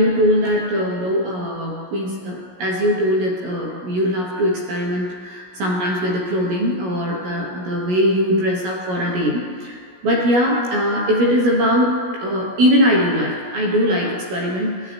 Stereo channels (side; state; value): left; late; 16 ms